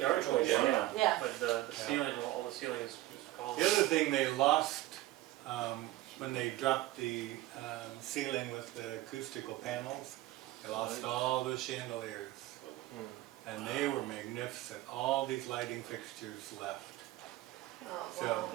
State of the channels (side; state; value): left; quieter; 16.4 dB